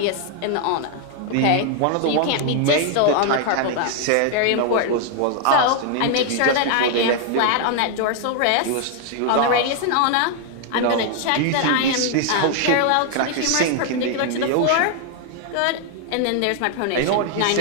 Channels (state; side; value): different; both; correlation 0.00